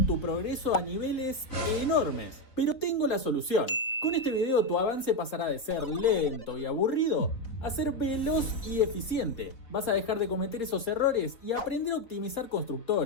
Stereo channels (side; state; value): right; late; 4.0 ms